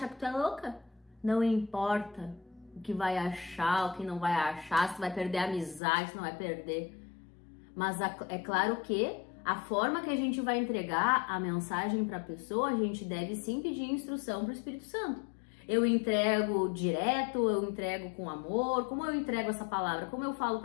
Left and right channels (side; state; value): right; drops out; at 5.8 s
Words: que tu é louca. Não importa o que vai achar, o que não vai achar, se vai perder a amizade, se não vai perder. Mas é claro que a forma que a gente vai entregar a mensagem para a pessoa, a gente deve sim pedir instrução para o Espírito Santo. Eu entrego direto, eu entrego com amor, como eu entrego essa palavra, como eu falo